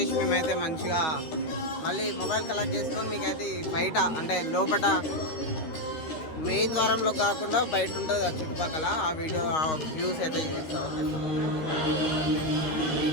మేమైతే మంచిగా మళ్ళీ మొబైల్ కలెక్ట్ చేసుకొని మీకైతే బయట అంటే లోపల మెయిన్ ద్వారంలో కాకుండా బయట ఉంటుంది ఆ చుట్టుపక్కల ఆ వీడియో ఆ వ్యూస్ అయితే చూపిస్తాం. ఓకే,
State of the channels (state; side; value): late; right; 13 ms